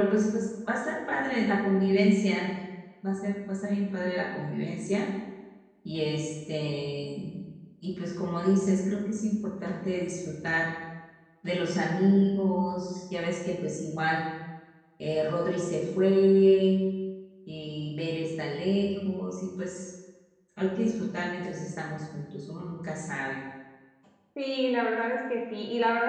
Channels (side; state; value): both; identical; correlation 1.00